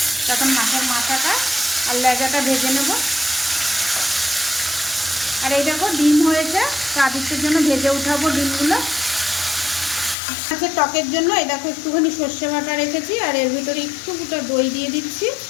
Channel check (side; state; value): right; drops out; at 10.2 s